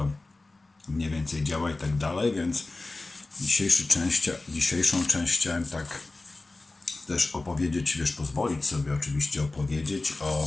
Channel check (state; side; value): quieter; right; 3.2 dB